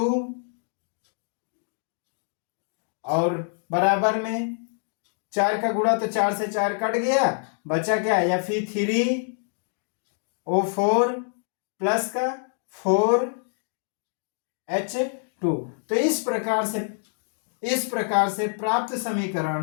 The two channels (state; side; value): silent; right; 57 dB below the other